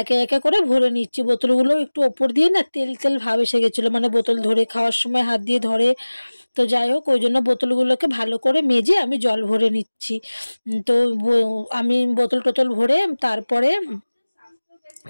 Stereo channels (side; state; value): both; inverted; correlation -1.00